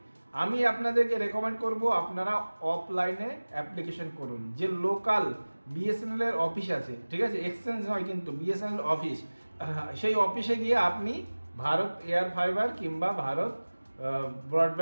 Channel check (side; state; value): both; inverted; correlation -1.00